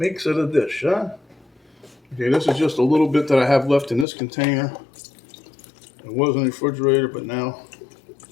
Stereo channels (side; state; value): right; drops out; at 4.0 s